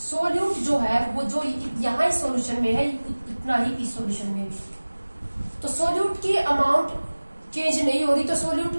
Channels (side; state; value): both; inverted; correlation -1.00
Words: सॉल्यूट जो है वो जो यहाँ इस सॉल्यूशन में है इतना ही इस सॉल्यूशन में भी। तो सॉल्यूट की अमाउंट चेंज नहीं हो रही, तो सॉल्यूट